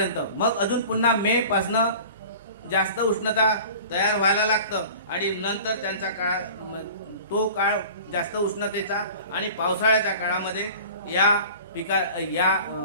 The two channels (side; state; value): both; inverted; correlation -0.41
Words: मग अजून पुन्हा मे पासनं जास्त उष्णता तयार व्हायला लागतं आणि नंतर त्यांचा काळ तो काळ जास्त उष्णतेचा आणि पावसाळ्याच्या काळामध्ये या